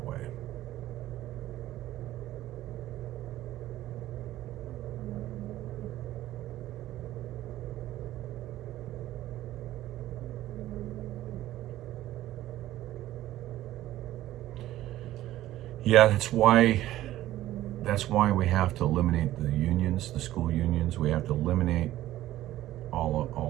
way. Yeah, that's why we have to eliminate the unions, the school unions. We have to eliminate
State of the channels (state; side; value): quieter; left; 14.5 dB